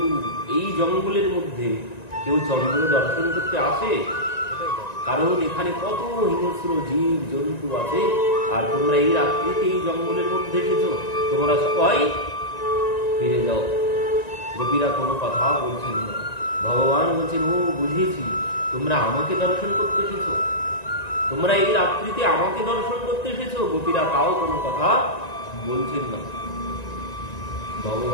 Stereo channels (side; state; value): right; late; 1.9 ms